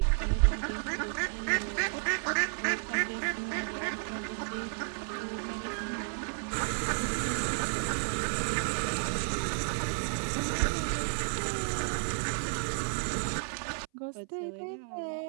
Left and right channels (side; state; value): left; silent; 56 dB below the other